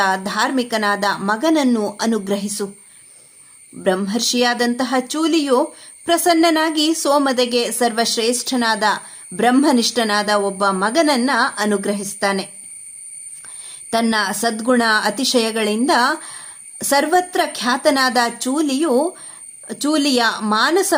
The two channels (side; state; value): both; identical; correlation 1.00